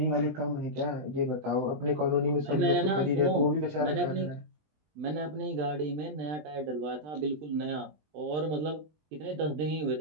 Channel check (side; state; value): left; late; 20 ms